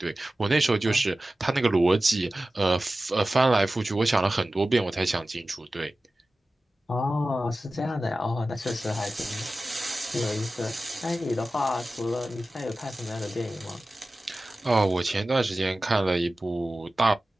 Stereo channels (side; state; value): both; normal; correlation 0.96